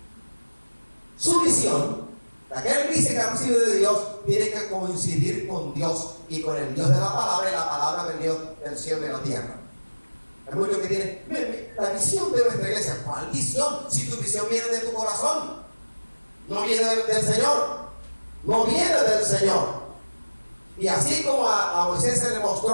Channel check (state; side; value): inverted; both; correlation -1.00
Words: su visión, la que él dice que ha recibido de Dios, tiene que coincidir con Dios y con el Dios de la palabra y la palabra del Dios del cielo y de la tierra. Hay muchos que tienen la visión de nuestra iglesia. ¿Cuál visión? Si tu visión viene de tu corazón, no viene del Señor, no viene del Señor. Y así como a Moisés se le